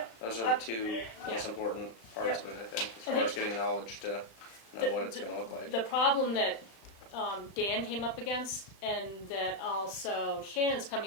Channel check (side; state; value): right; late; 36 ms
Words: Those are the two most important parts of it, I think, as far as getting knowledge to know what it's gonna look like. The problem that Dan came up against, and that also Shannon's